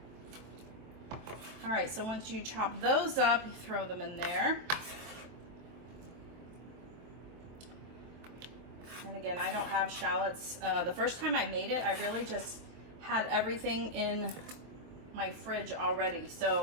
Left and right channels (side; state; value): left; late; 23 ms